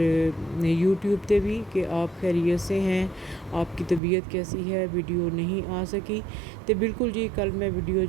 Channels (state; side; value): drops out; left; at 4.0 s